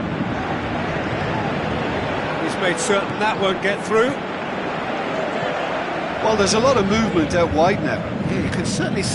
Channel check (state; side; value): identical; both; correlation 1.00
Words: He's made certain that won't get through. Well, there's a lot of movement out wide now. Yeah, you can certainly